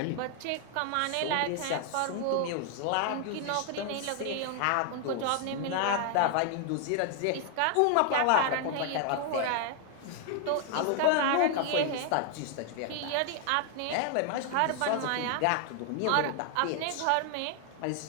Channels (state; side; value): different; both; correlation 0.00